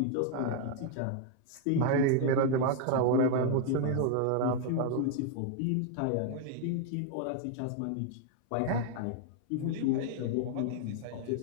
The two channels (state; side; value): different; both; correlation 0.01